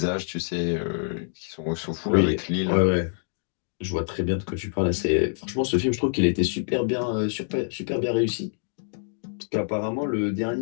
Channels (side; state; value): right; silent; digital silence